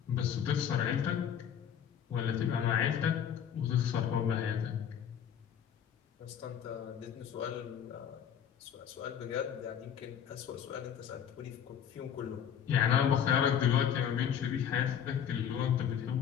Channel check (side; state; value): right; quieter; 8.8 dB